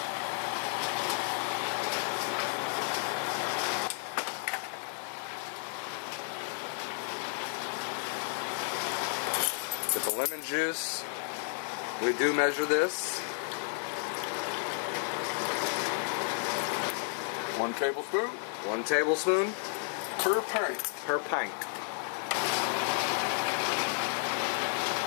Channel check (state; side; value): silent; right; 56 dB below the other